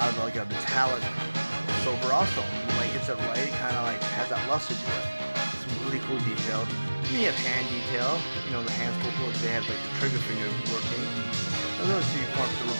of like a metallic silver also. When the light hits it right, it kind of like has that luster to it. It's a really cool detail. And you have hand detail. You know, the hands pull because they have like the trigger finger working. So you want to put the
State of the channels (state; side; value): inverted; both; correlation -1.00